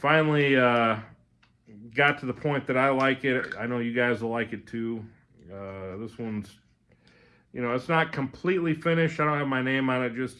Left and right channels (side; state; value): both; identical; correlation 1.00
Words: got to the point that I like it. I know you guys will like it too. This one's, it's not completely finished. I don't have my name on it